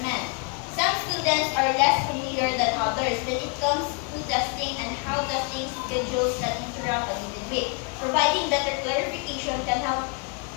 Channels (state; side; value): quieter; right; 34.9 dB